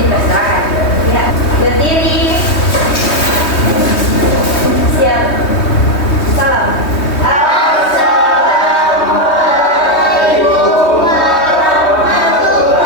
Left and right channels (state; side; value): late; right; 3.2 ms